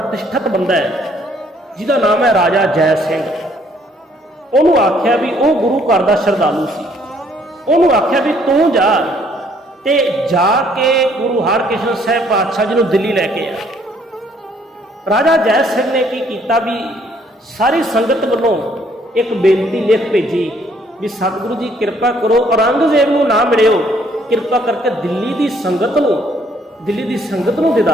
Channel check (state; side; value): normal; both; correlation 0.64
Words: ਬੰਦਾ ਹੈ ਜਿਹਦਾ ਨਾਮ ਹੈ ਰਾਜਾ ਜੈ ਸਿੰਘ। ਉਹਨੂੰ ਆਖਿਆ ਵੀ ਉਹ ਗੁਰੂ ਘਰ ਦਾ ਸ਼ਰਧਾਲੂ ਸੀ। ਉਹਨੂੰ ਆਖਿਆ ਵੀ ਤੂੰ ਜਾ ਤੇ ਜਾ ਕੇ ਗੁਰੂ ਹਰਕ੍ਰਿਸ਼ਨ ਸਾਹਿਬ ਪਾਤਸ਼ਾਹ ਜੀ ਨੂੰ ਦਿੱਲੀ ਲੈ ਕੇ ਆ। ਰਾਜਾ ਜੈ ਸਿੰਘ ਨੇ ਕੀ ਕੀਤਾ ਵੀ ਸਾਰੀ ਸੰਗਤ ਵੱਲੋਂ ਇੱਕ ਬੇਨਤੀ ਲਿਖ ਭੇਜੀ ਵੀ ਸਤਿਗੁਰੂ ਜੀ ਕਿਰਪਾ ਕਰੋ ਔਰੰਗਜ਼ੇਬ ਨੂੰ ਨਾ ਮਿਲਿਓ, ਕਿਰਪਾ ਕਰਕੇ ਦਿੱਲੀ ਦੀ ਸੰਗਤ ਨੂੰ